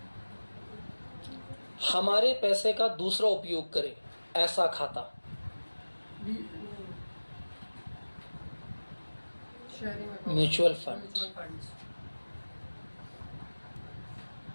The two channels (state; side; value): inverted; both; correlation -1.00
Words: हमारे पैसे का दूसरा उपयोग करे, ऐसा खाता, म्यूचुअल फंड।